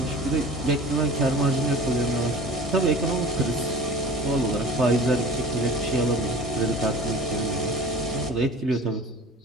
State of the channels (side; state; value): both; normal; correlation 0.41